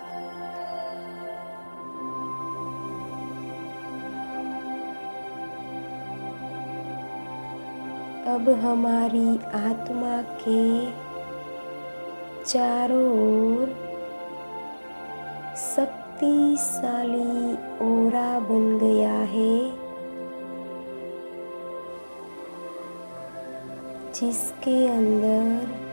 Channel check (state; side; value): inverted; both; correlation -1.00